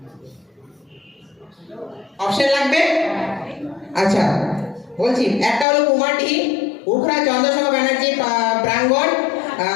অপশন লাগবে? আচ্ছা বলছি, একটা হলো কুমারটি, উখরা চন্দ্রশেখর ব্যানার্জি প্রাঙ্গণ,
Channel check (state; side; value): drops out; right; at 5.7 s